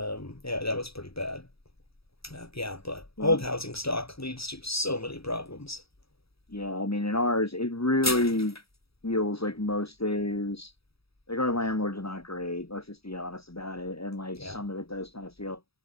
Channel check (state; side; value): late; right; 0.77 ms